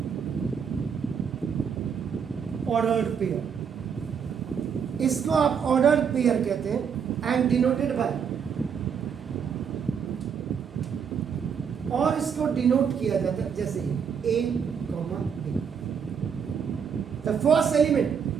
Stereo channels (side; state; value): left; quieter; 7.0 dB